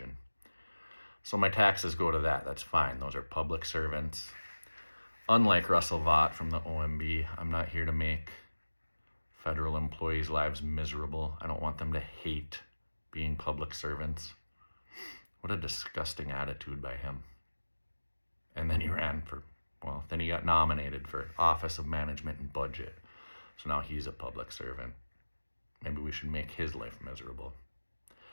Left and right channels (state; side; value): inverted; both; correlation -1.00